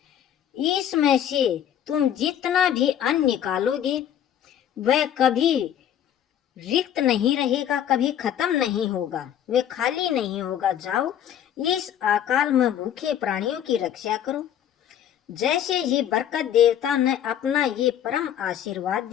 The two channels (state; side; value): quieter; right; 10.1 dB